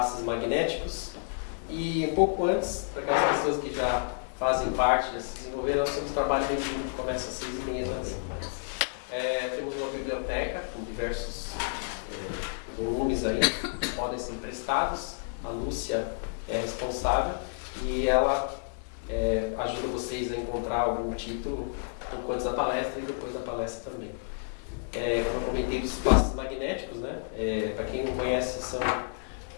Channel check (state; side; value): silent; right; digital silence